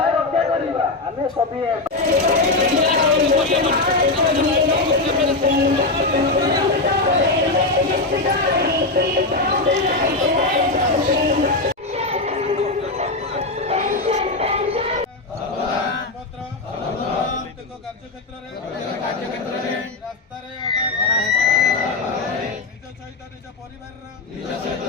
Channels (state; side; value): quieter; right; 3.2 dB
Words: ଆମେ ସଭିଏ କାର୍ଯ୍ୟକ୍ଷେତ୍ର ରାସ୍ତାରେ ନିଜ ସହିତ ନିଜ ପରିବାରର